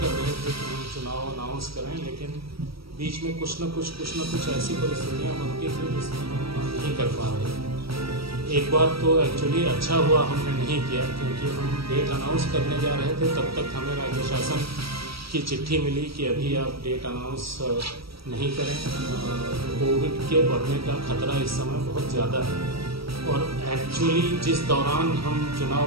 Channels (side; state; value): left; late; 0.75 ms